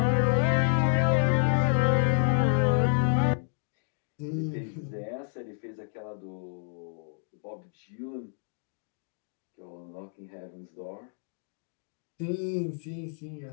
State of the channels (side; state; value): right; silent; 58 dB below the other